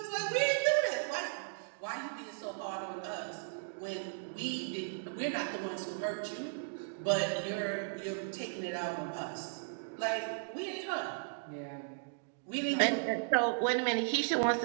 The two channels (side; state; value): left; silent; digital silence